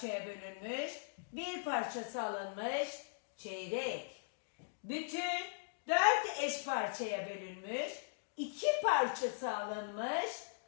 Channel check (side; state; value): right; silent; digital silence